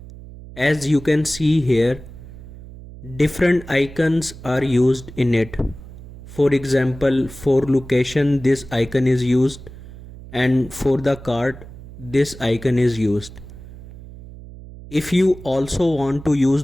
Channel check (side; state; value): right; noise; hum, 16 dB below the sound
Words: As you can see here, different icons are used in it. For example, for location this icon is used and for the cart this icon is used. If you also want to use